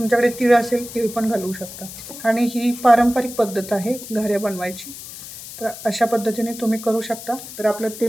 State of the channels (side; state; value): left; noise; hiss, 13 dB below the sound